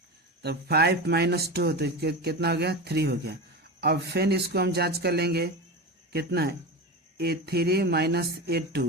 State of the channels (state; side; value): normal; both; correlation 0.24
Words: तो 5 माइनस 2, तो कितना हो गया 3 हो गया। अब फिर इसको हम जांच कर लेंगे, कितना A3 माइनस